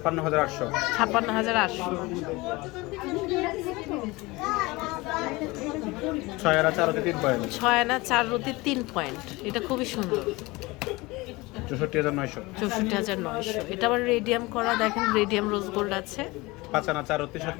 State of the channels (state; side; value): quieter; right; 22.5 dB